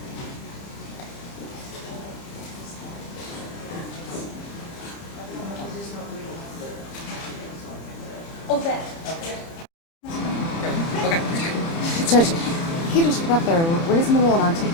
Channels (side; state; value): right; late; 30 ms